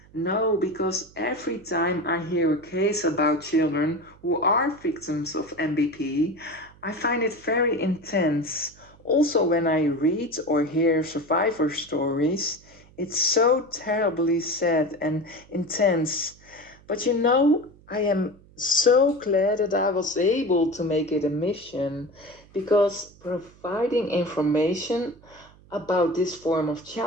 no, because every time I hear a case about children who are victims of MBP, I find it very intense. Also, when I read or hear survivor stories, it's so terribly sad and intense. But I am so glad that I was able to make it a mission, because providing information about this form of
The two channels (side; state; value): right; noise; hum, 26 dB below the sound